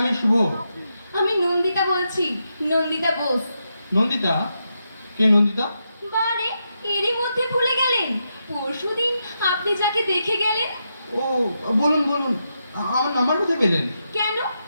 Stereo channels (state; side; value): inverted; both; correlation -0.84